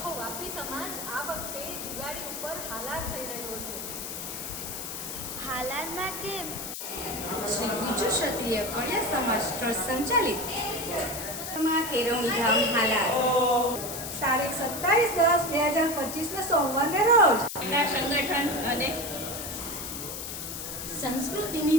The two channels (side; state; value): left; noise; hiss, 7 dB below the sound